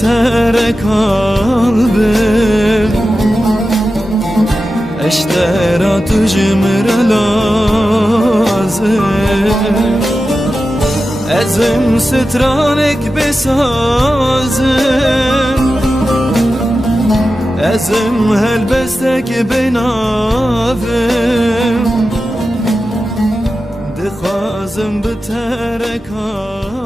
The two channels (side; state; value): both; normal; correlation 0.92